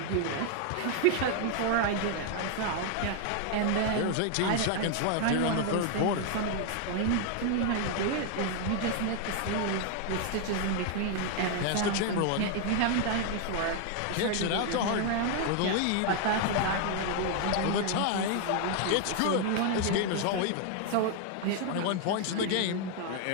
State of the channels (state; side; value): different; both; correlation 0.00